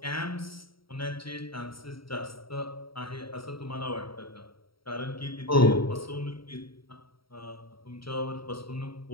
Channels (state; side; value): late; right; 0.75 ms